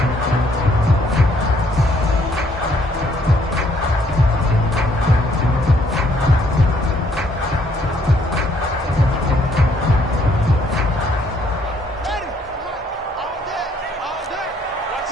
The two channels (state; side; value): normal; both; correlation 0.67